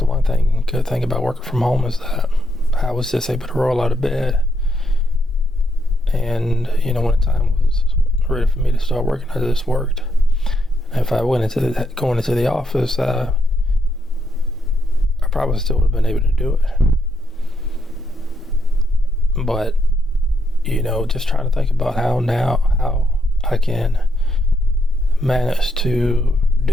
one good thing about working from home, is that I was just able to roll out of bed, and when the time was ready for me to start working, I just worked. If I went going into the office, I probably still would have been able to do it. But just trying to think about how I can manage to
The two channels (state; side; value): normal; both; correlation 0.77